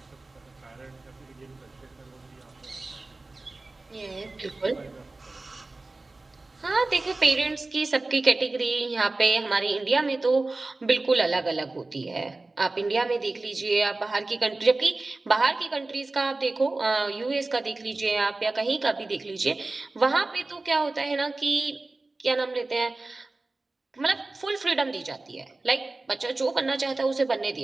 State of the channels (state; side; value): quieter; left; 3.2 dB